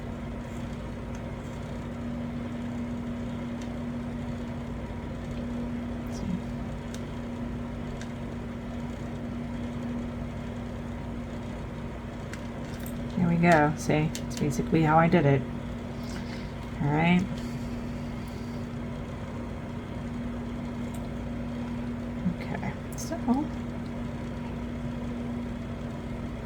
There we go. See, it's basically how I did it. All right. Okay, so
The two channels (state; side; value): identical; both; correlation 1.00